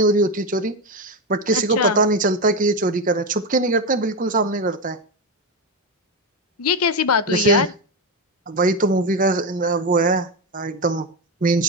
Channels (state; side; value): normal; both; correlation 0.12